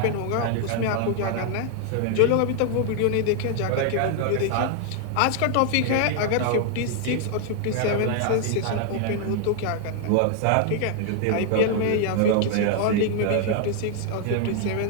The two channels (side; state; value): both; different; correlation 0.00